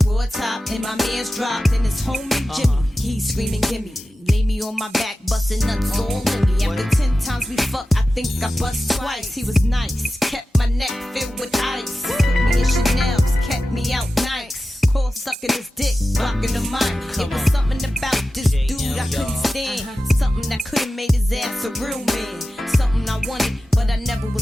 raw top, and my man's dropped. And his homie Jimmy, he's screaming, gimme. Lay me on my back, busting nuts all in me. After 10 times we fucked, I think I bust twice. He was nice, kept my neck filled with ice. Put me in Chanel's, kept me out nice. Call sucking his dick, blocking the mic. It was something about this dude I couldn't stand. Something that could've made his ass a real man. Something I wanted, but I never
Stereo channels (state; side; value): normal; both; correlation 0.94